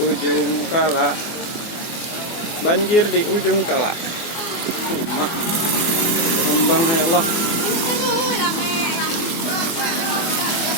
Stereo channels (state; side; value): late; right; 24 ms